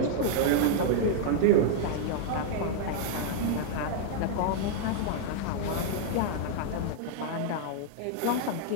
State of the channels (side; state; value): both; different; correlation -0.01